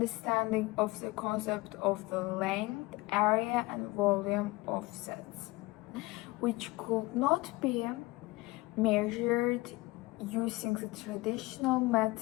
of the concept of the length, area, and volume of sets, which could not be measured using the traditional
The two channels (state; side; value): quieter; right; 21.7 dB